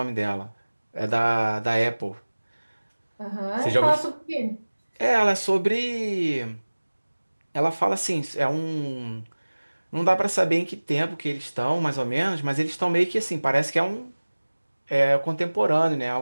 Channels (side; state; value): both; inverted; correlation -1.00